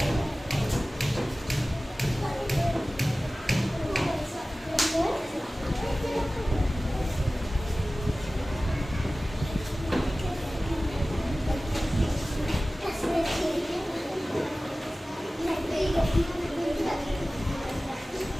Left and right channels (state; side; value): normal; both; correlation 0.97